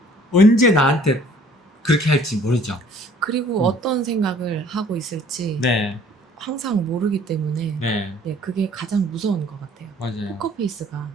언제 나한테 그렇게 할지 모르죠. 그리고 어떤 생각을 하고 있을지 네. 항상 모르기 때문에 네. 네, 그게 가장 무서운 것 같아요. 맞아요. 포커페이스가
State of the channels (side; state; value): both; normal; correlation 0.55